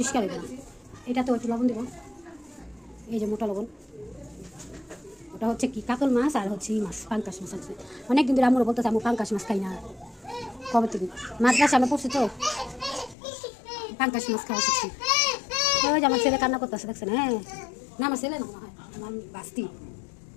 হবে না। এটা তো একটু লবণ দেবো, এই যে মোটা লবণ। ওটা হচ্ছে কি কাতল মাছ আর হচ্ছে এই মাছ, পাঙ্কাশ মাছ আছে। অনেকদিন ধরে আমরা বলতেছে আমি পাঙ্কাশ মাছ খাই না, কবে থেকে মাদ্রাসা আমরা পড়ছি তো পাঙ্কাশ মাছ খাওয়া শিখছি। ওই যে আমার ছেলে কান্না করতেছে, দেখছেন? হ্যাঁ না, আমার ছেলে না, আমার বাস্তি,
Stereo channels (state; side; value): drops out; right; at 13.2 s